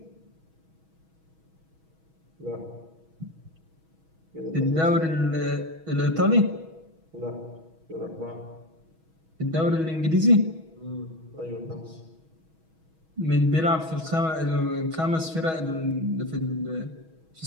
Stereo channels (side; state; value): left; late; 6.2 ms